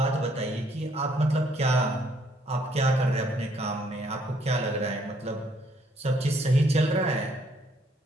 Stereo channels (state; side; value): normal; both; correlation 0.67